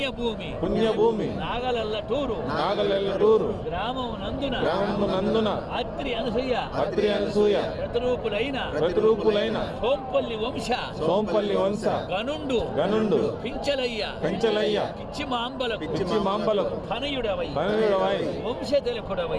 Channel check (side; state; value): both; identical; correlation 1.00